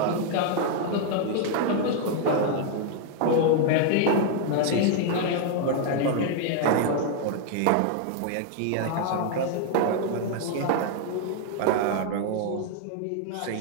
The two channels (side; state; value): both; different; correlation 0.00